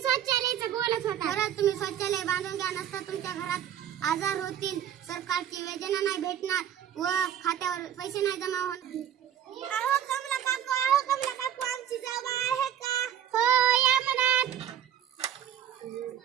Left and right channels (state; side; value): quieter; left; 10.0 dB